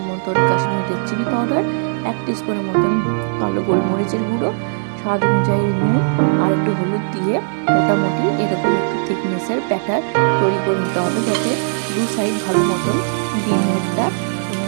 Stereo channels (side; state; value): left; silent; digital silence